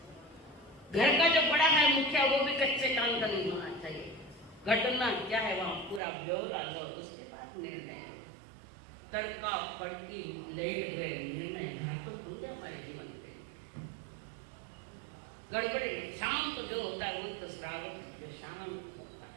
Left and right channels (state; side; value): drops out; left; at 6.0 s